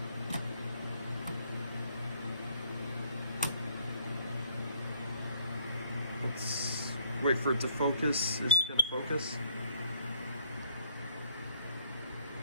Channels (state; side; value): inverted; both; correlation -0.64